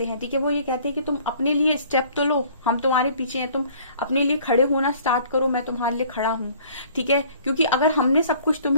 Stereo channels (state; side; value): inverted; both; correlation -0.55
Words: हैं, ठीक है। वो ये कहते हैं कि तुम अपने लिए स्टेप तो लो, हम तुम्हारे पीछे हैं, तुम अपने लिए खड़े होना स्टार्ट करो, मैं तुम्हारे लिए खड़ा हूं, ठीक है। क्योंकि अगर हमने सब कुछ